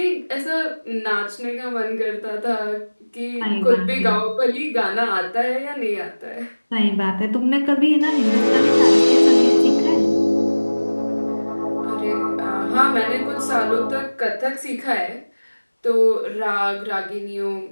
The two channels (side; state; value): both; inverted; correlation -1.00